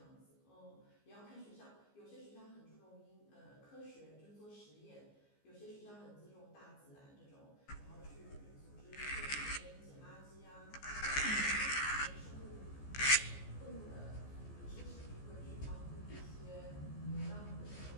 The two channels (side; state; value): right; late; 15 ms